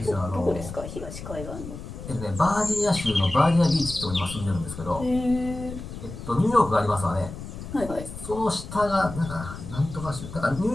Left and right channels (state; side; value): noise; left; rumble, 11 dB below the sound